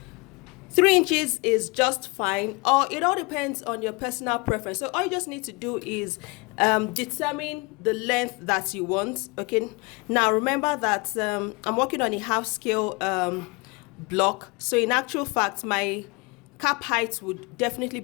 3 inches is just fine, or it all depends on your personal preference. So all you just need to do is determine the length that you want. Okay, now remember that I'm working on a half scale block, so in actual fact my cap height would definitely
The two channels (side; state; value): right; quieter; 27.7 dB